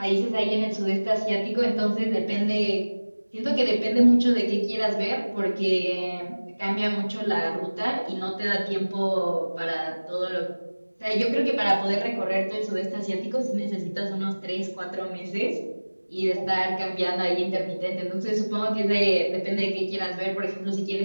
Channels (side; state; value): both; inverted; correlation -1.00